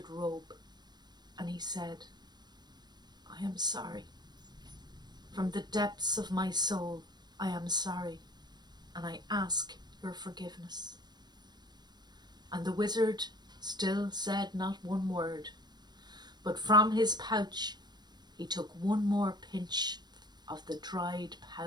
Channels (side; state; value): left; late; 0.20 ms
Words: robe, and he said, "I am sorry. From the depths of my soul, I am sorry, and I ask your forgiveness." And the wizard still said not one word, but from his pouch he took one more pinch of the dried,